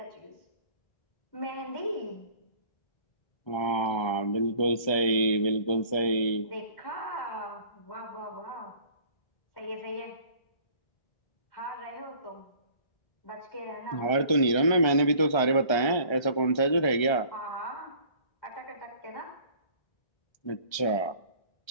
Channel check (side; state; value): right; late; 1.3 ms